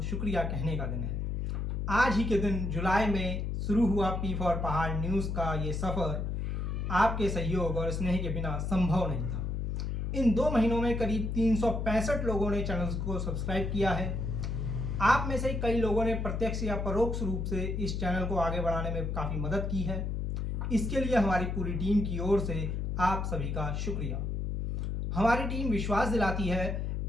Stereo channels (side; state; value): left; noise; hum, 1 dB below the sound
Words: शुक्रिया कहने का दिन है। आज ही के दिन जुलाई में शुरू हुआ पी फॉर पहाड़ न्यूज़ का ये सफ़र आपके सहयोग और स्नेह के बिना संभव नहीं था। इन 2 महीनों में करीब 365 लोगों ने चैनल को सब्सक्राइब किया है। आप में से कई लोगों ने प्रत्यक्ष या परोक्ष रूप से इस चैनल को आगे बढ़ाने में काफ़ी मदद की है। इसके लिए हमारी पूरी टीम की ओर से आप सभी का शुक्रिया। हमारी टीम विश्वास दिलाती है